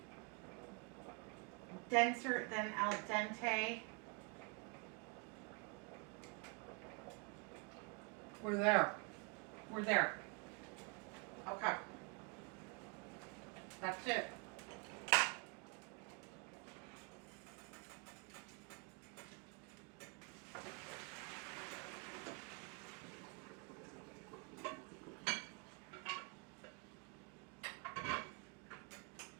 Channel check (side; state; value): left; quieter; 31.8 dB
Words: denser than al dente. We're there. We're there. Okay. That's it.